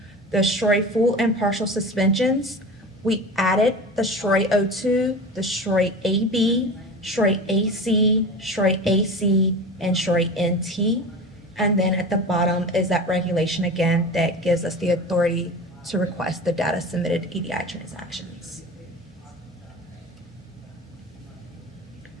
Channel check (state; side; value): normal; both; correlation 0.32